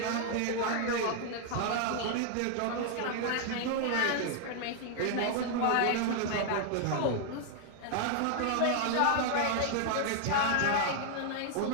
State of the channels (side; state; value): both; different; correlation 0.00